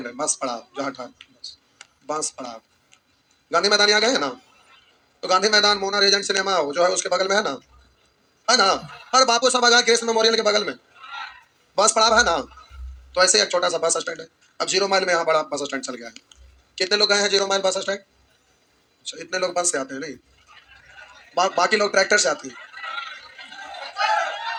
है, बस पड़ाव जहाँ ठहर, बांस पड़ाव। गांधी मैदान यहाँ गए हैं ना, तो गांधी मैदान मोना रीजेंट सिनेमा जो है उसके बगल में है ना, है ना। हर बापू सभागार कृष्ण मेमोरियल के बगल में बस पड़ाव है ना। तो ऐसे एक छोटा सा बस स्टैंड है। अब 0 माइल में यहाँ बड़ा बस स्टैंड चल गया है। कितने लोग गए हैं 0 माइल बस स्टैंड? अच्छा, इतने लोग बस से आते हैं नहीं, बाकी लोग ट्रैक्टर से आते हैं।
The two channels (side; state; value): both; identical; correlation 1.00